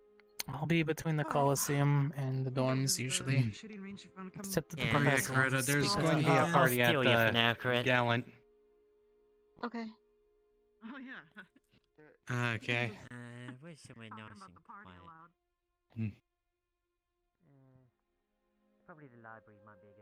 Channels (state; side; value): identical; both; correlation 1.00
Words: I'll be between the Coliseum and the dorms usually. Shooting range if you want to come. Except that the Yeah, professor Greta, wants to there's speak going to with be me. a I'll party at steal you for now, the Crit. Gallant. Okay. Oh yeah. Okay. Where's somewhere nice and quiet? Probably the library might be a